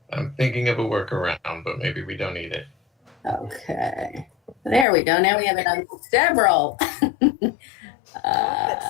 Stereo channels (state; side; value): drops out; right; at 4.9 s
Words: I'm thinking of a workaround, but maybe we don't need it. Okay. There we go. Now we have it on several.